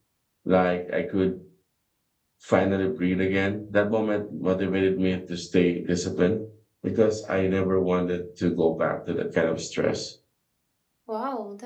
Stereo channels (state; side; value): identical; both; correlation 1.00